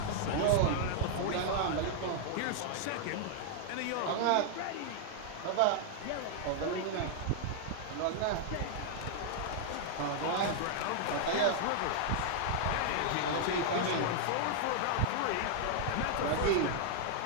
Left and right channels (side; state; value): both; different; correlation -0.01